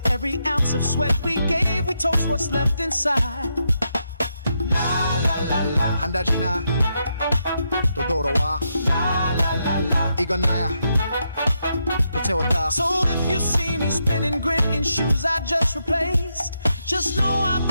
every ounce of sweat we gave, we toast what's left inside. La la la la. 한 달 지나 또 돌아와. La la la la. 이건 나야. 또 채웠다. So if you see me spinning, grinning shoes I just replaced, Just know I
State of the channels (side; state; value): both; inverted; correlation -0.81